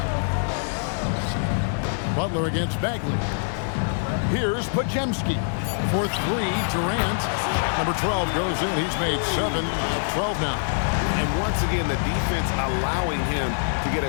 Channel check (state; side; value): silent; right; digital silence